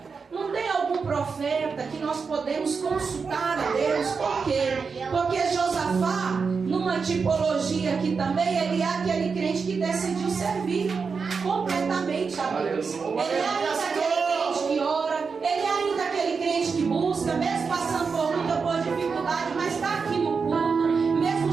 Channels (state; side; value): quieter; left; 5.2 dB